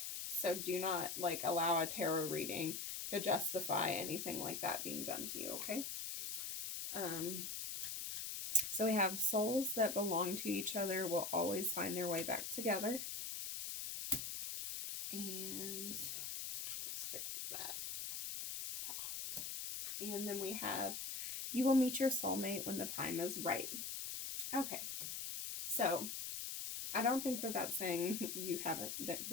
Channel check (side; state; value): left; noise; hiss, 4 dB below the sound